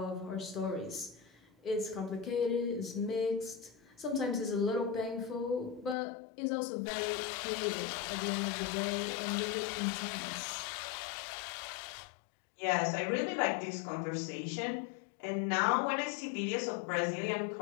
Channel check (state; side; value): drops out; right; at 6.0 s